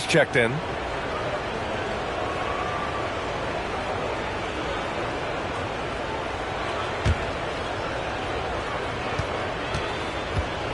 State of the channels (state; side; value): identical; both; correlation 1.00